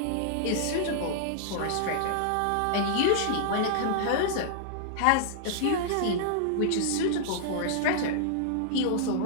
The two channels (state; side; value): different; both; correlation -0.01